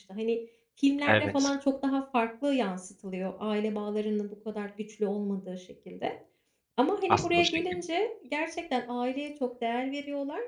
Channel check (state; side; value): identical; both; correlation 1.00